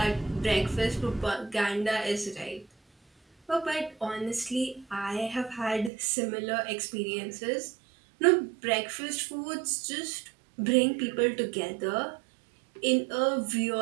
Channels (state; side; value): drops out; left; at 5.9 s